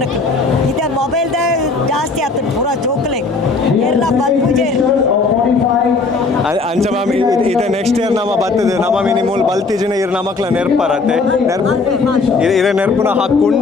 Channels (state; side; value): quieter; right; 4.0 dB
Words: ಇದೆ ಮೊಬೈಲ್ದ ಜಾಸ್ತಿ ಆಗ್ತದೆ ಪೂರ ಜೋಕ್ಲೆ ಎಲ್ಲ ಬಲ್ಪುಜೆ ಅಂಚ ಮ್ಯಾಮ್ ಇದು ನೆಕ್ಸ್ಟ್ ಇಯರ್ ನಮ್ಮ ಬರ್ತದೆ ನಮ್ಮ ಮಿನಿಮೂಲ್ ಬಲ್ತಿಜಿನ ಇರ್ ನಮಕ್ಲ ನೆರ್ಪರತ್ತೆ ಇದೇ ನೆರ್ಪುನ